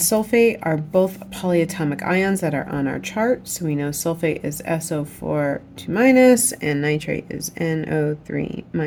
are both polyatomic ions that are on our chart. So we know sulfate is SO4 2- and nitrate is NO3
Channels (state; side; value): identical; both; correlation 1.00